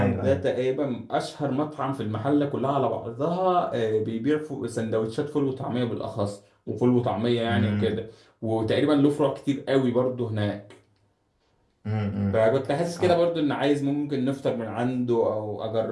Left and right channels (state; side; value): identical; both; correlation 1.00